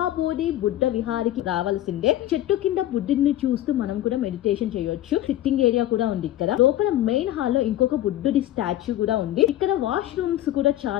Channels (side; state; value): right; quieter; 13.4 dB